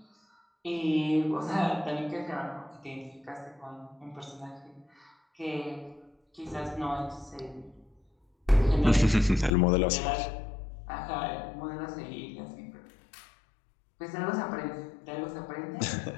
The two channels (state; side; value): drops out; right; at 9.6 s